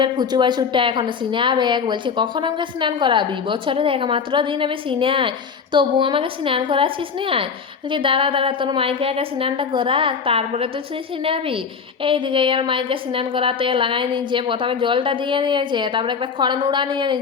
ফুচু বাছুরটা এখনো সিনে আবেগ বলছে, কখন আমাকে স্নান করাবি? বছরের একমাত্র দিন আমি সিনে আয়, তবু আমাকে স্নান করাচ্ছিস না? বলছি দাঁড়া দাঁড়া, তোর মাইকে আগে স্নানটা করা, তারপরে তো তুই সিনাবি। এইদিকে আর মাইকে স্নান করাতে লাগাই নিয়েছে। প্রথমে জলটা দিয়ে নিয়েছে, তারপরে একটা খড় নুড়া নিয়ে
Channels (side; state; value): right; quieter; 6.0 dB